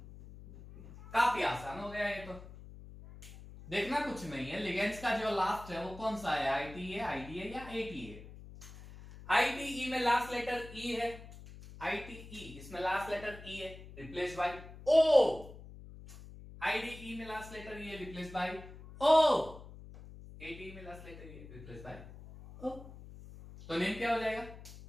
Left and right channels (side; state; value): left; noise; hum, 16 dB below the sound